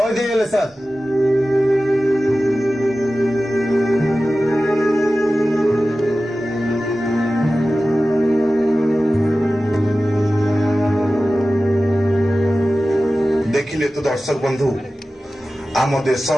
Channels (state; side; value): normal; both; correlation 0.95